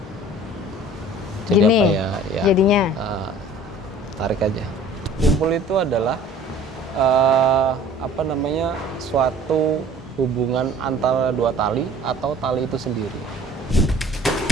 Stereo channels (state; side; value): normal; both; correlation 0.50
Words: Jadi Gini, apa ya? Ya. Jadinya? Tarik aja. Simpul itu adalah suatu hubungan antara dua tali atau tali itu sendiri.